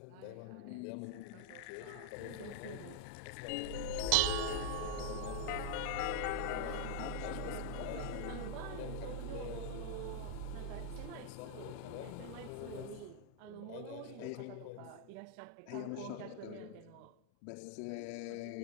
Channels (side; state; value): both; different; correlation 0.00